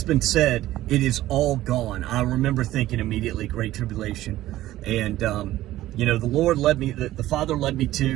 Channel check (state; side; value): quieter; left; 15.0 dB